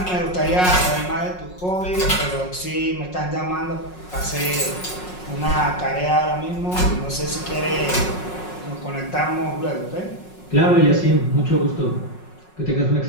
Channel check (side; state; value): right; late; 5.5 ms